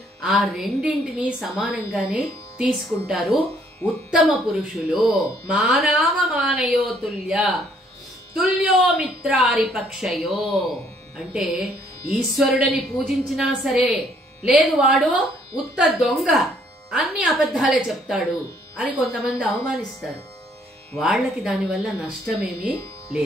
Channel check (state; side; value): normal; both; correlation 0.65